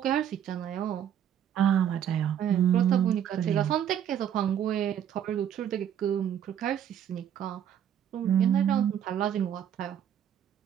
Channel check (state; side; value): quieter; left; 9.6 dB